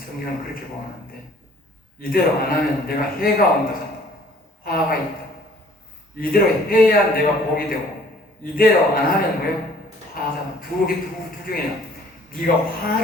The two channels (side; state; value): both; normal; correlation 0.56